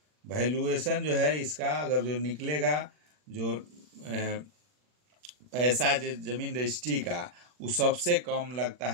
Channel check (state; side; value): late; left; 40 ms